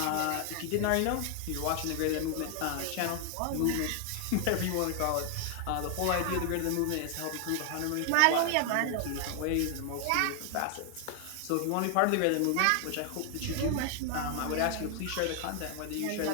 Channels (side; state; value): both; different; correlation 0.00